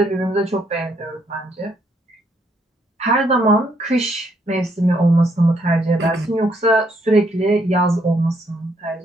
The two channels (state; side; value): normal; both; correlation 0.72